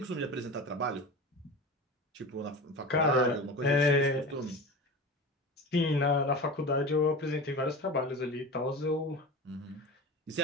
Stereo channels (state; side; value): normal; both; correlation 0.31